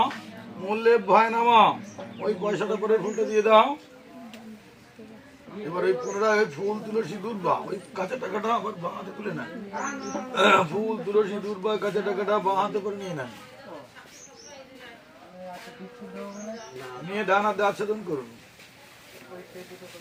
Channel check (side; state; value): both; identical; correlation 1.00